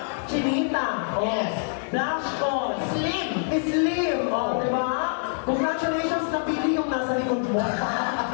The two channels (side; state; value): right; silent; digital silence